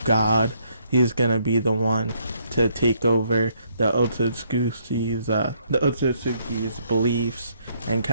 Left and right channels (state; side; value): inverted; both; correlation -0.70